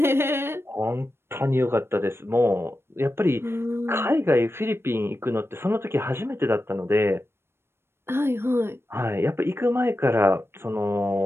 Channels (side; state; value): left; late; 0.12 ms